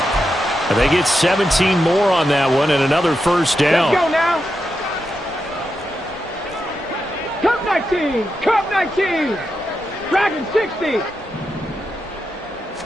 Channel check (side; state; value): both; normal; correlation 0.86